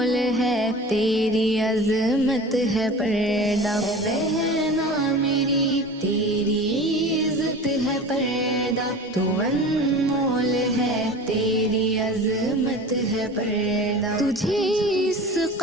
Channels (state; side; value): normal; both; correlation 0.36